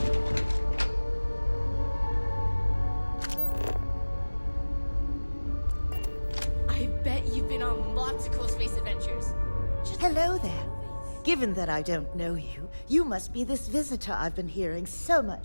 I bet you've been on lots of cool space adventures. Hello there. Given that I don't know you, you must be this visitor I've been hearing so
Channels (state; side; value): inverted; both; correlation -1.00